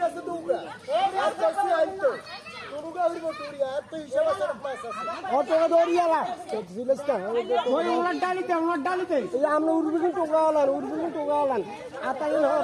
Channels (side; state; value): both; identical; correlation 1.00